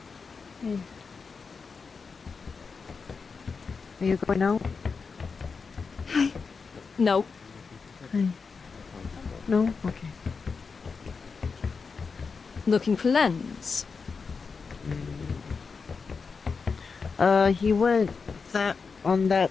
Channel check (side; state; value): right; quieter; 5.0 dB